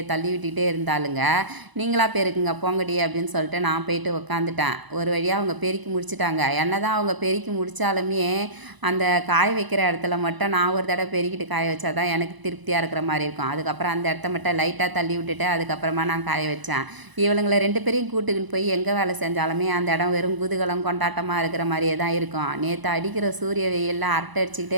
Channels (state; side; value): late; left; 1.0 ms